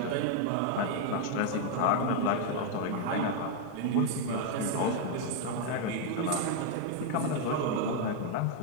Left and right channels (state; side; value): different; both; correlation 0.00